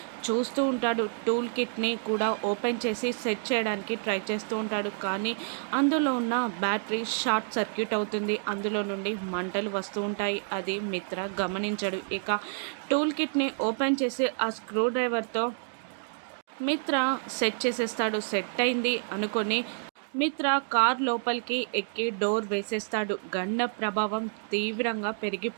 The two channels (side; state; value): left; silent; digital silence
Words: చూస్తూ ఉంటాడు. టూల్ కిట్ని కూడా ఓపెన్ చేసి సెట్ చేయడానికి ట్రై చేస్తూ ఉంటాడు. కానీ అందులో ఉన్న బ్యాటరీ షార్ట్ సర్క్యూట్ అవుతుంది. అందులో నుండి మంటలు వస్తూ ఉంటాయి. అది మిత్ర గమనించడు. ఇక టూల్ కిట్ని ఓపెన్ చేసి ఆ స్క్రూ డ్రైవర్తో మిత్ర సెట్ చేసేస్తాడు. సెట్ అయింది అనుకొని మిత్ర కార్ లోపలికి ఎక్కి డోర్ వేసేస్తాడు. గండ ప్రభావం తీవ్రంగా